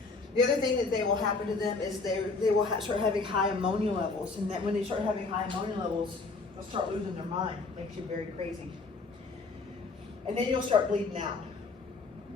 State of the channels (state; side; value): quieter; right; 4.0 dB